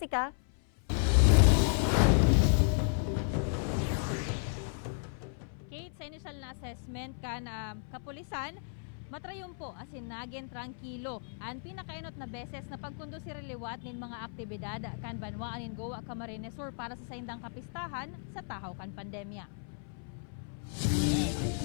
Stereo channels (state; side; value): silent; right; 55 dB below the other